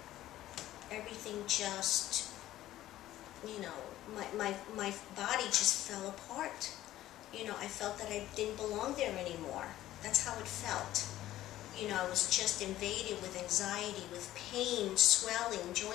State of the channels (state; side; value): quieter; right; 14.2 dB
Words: everything just, my body just fell apart. I felt that I didn't belong there anymore. That's how it felt. I was just invaded with anxiety, with pain, swelling,